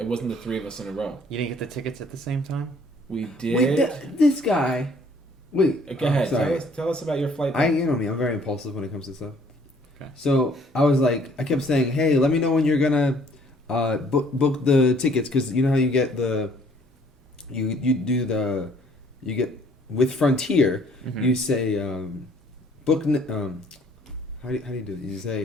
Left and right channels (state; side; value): normal; both; correlation 0.60